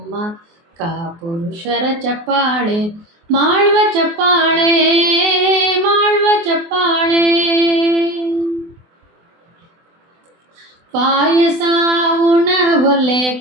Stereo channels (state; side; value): late; left; 24 ms